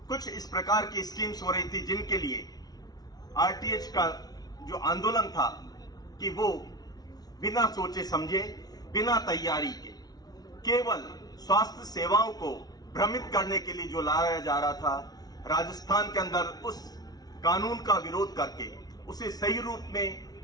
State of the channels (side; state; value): right; late; 0.19 ms